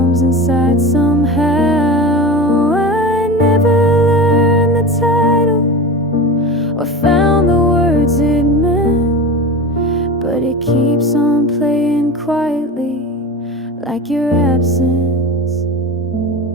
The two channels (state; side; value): normal; both; correlation 0.29